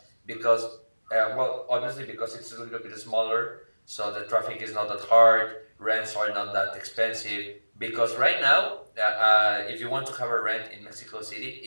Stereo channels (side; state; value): both; inverted; correlation -1.00